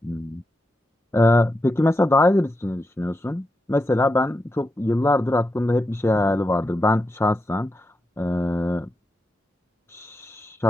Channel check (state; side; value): normal; both; correlation 0.87